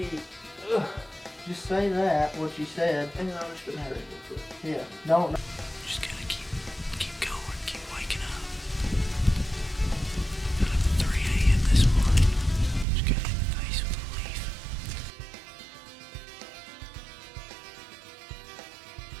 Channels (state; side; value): drops out; left; at 12.9 s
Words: Just say that what you said. And I was gonna have it. Yeah. No.